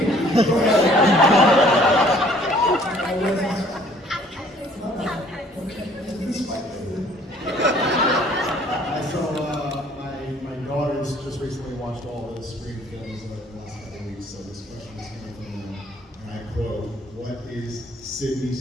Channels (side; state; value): both; normal; correlation 0.57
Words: ahead. My daughters just recently watched all the Scream films in the last couple of weeks, so this question is coming from them. And I quote, what is